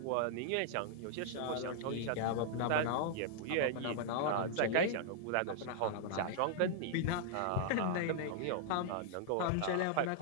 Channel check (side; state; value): both; different; correlation -0.01